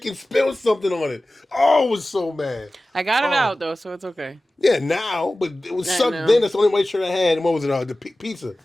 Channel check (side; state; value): both; normal; correlation 0.96